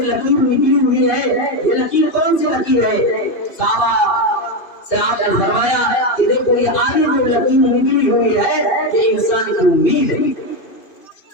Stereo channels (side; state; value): right; late; 2.8 ms